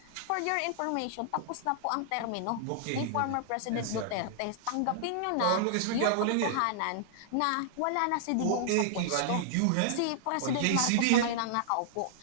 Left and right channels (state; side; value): different; both; correlation -0.01